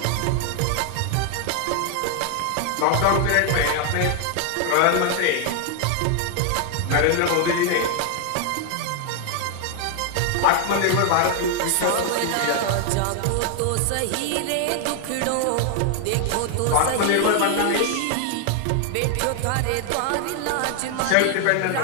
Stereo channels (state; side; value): different; both; correlation 0.00